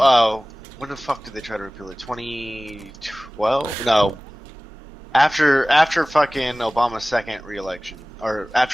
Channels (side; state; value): both; normal; correlation 0.98